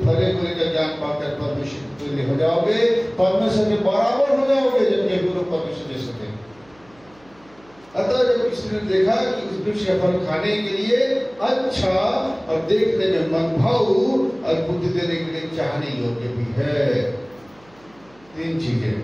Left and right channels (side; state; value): right; noise; hum, 29 dB below the sound